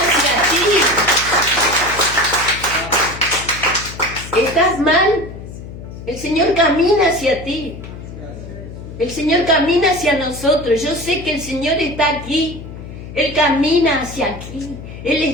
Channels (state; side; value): noise; left; hum, 12 dB below the sound